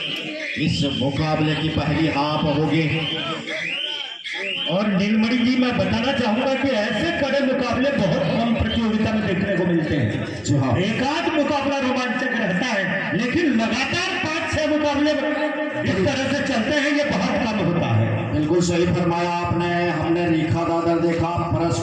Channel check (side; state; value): both; identical; correlation 1.00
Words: इस मुकाबले की पहली हाफ होगी। और नीलमणि जी, मैं बताना चाहूंगा कि ऐसे कड़े मुकाबले बहुत कम प्रतियोगिता में देखने को मिलते हैं। जी हाँ, एक आध मुकाबला रोमांचक रहता है, लेकिन लगातार 5-6 मुकाबले इस तरह से चलते हैं, ये बहुत कम होता है। बिल्कुल सही फरमाया आपने। हमने रेखा दादर देखा,